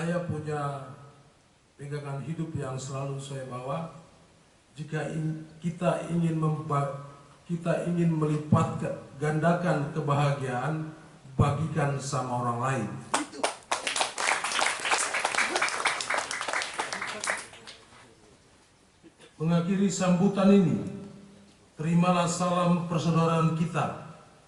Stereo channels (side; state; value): both; identical; correlation 1.00